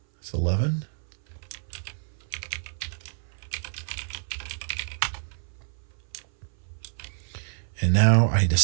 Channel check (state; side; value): silent; left; 57 dB below the other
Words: It's 11. And now I